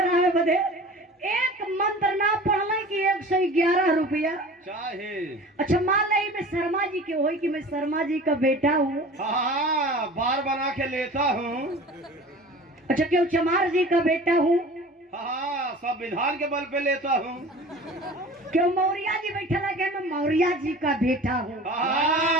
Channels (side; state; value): both; normal; correlation 0.40